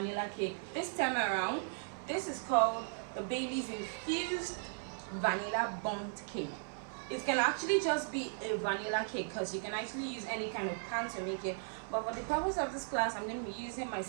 cake. This time around, this is called the Bailey's Infused Vanilla Bundt Cake. It can actually just be a vanilla cake because you can actually use any kind of pan to make it, but for the purpose of this class I'm going to be using my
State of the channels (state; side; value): silent; left; 53 dB below the other